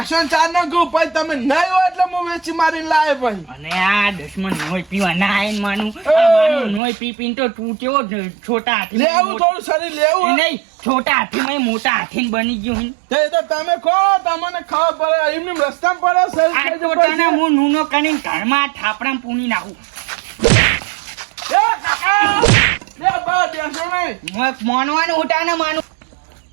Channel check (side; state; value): left; drops out; at 6.8 s